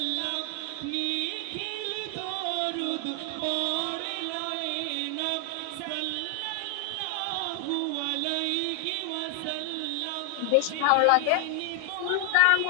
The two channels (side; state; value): both; different; correlation 0.00